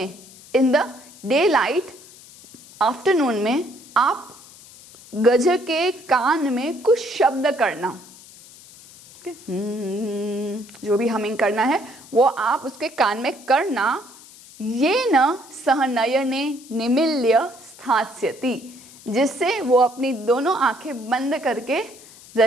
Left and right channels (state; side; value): noise; left; hiss, 21 dB below the sound